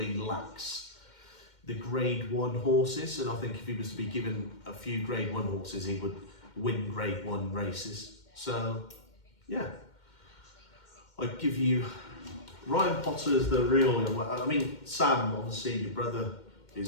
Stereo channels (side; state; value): right; late; 2.1 ms